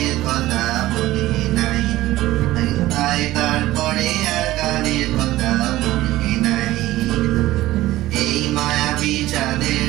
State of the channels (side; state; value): left; quieter; 16.4 dB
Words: কথা মনে নাই, তাই তারপরে আর গানের কথা মনে নাই। এই মায়াবী চাঁদের